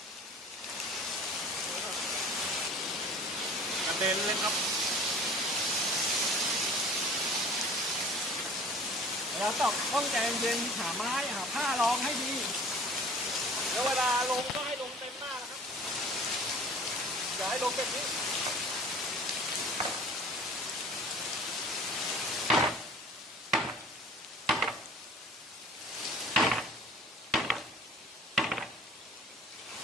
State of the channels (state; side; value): normal; both; correlation 0.45